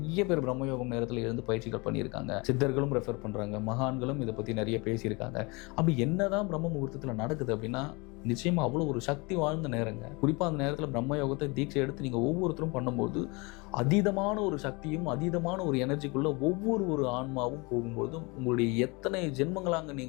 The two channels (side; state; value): right; quieter; 27.6 dB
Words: பேர் பிரம்மயோகம் நேரத்தில் இருந்து பயிற்சிகள் பண்ணியிருக்காங்க, சித்தர்களும் ரெஃபர் பண்றாங்க, மகான்களும் இதை பத்தி நிறைய பேசியிருக்காங்க. அப்படி என்னதான் பிரம்ம முகூர்த்தத்துல நடக்குது அப்படின்னா, நிச்சயமா அவ்வளோ ஒரு சக்தி வாழ்ந்த நேரங்க. குறிப்பா அந்த நேரத்தில் பிரம்மயோகத்தை தீட்சை எடுத்து நீங்க ஒவ்வொருத்தரும் பண்ணும்போது அதீதமான ஒரு சக்தியும் அதீதமான ஒரு எனர்ஜிக்குள்ள ஒவ்வொரு ஆன்மாவும் போகும்போது, உங்களுடைய எத்தனை ஜென்மங்களாக